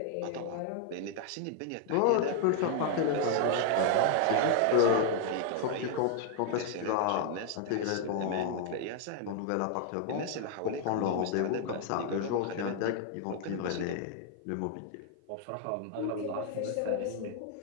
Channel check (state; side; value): different; both; correlation 0.00